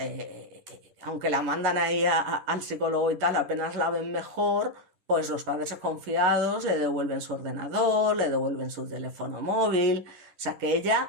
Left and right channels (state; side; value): late; left; 11 ms